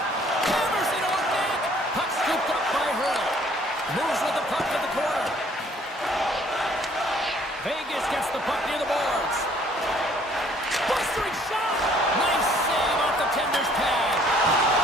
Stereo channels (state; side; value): normal; both; correlation 0.60